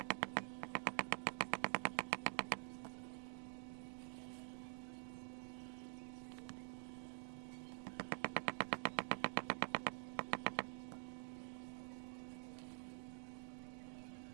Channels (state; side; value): silent; left; digital silence